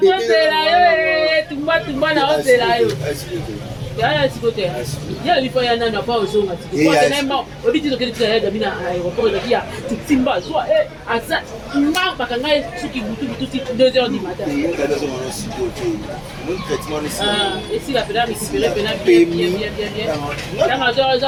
tumba na ozela yo. Ya sikote. Ya lipo ya nana pa ozonga tiko. Kwa tena obiti to kile ya Gabi na aéroport de kia timba so asa mba bakanga suki butu 2h du matin. Et si la pédale récupérer pédale bien. La major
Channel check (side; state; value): both; identical; correlation 1.00